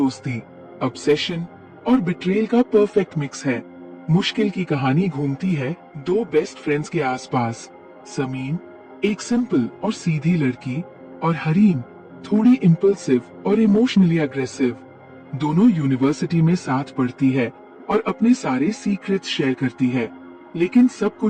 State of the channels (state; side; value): identical; both; correlation 1.00